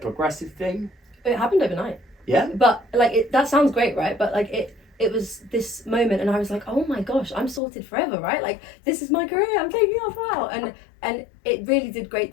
thing? It happened overnight. Yeah. But like that sounds great, right? But like it was this moment, and I was like, oh my gosh, I'm sorted forever, right? Like this is my career. I'm taking off now, and it really did great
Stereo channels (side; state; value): right; drops out; at 7.6 s